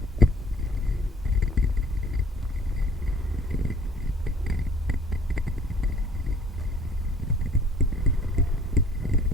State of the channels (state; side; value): normal; both; correlation 0.55